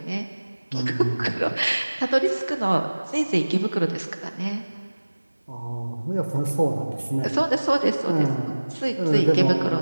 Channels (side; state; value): both; inverted; correlation -1.00